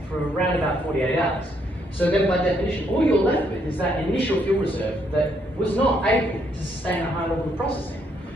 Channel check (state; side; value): normal; both; correlation 0.73